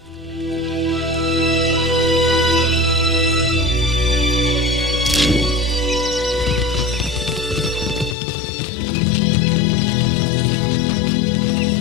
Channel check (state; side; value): drops out; right; at 8.2 s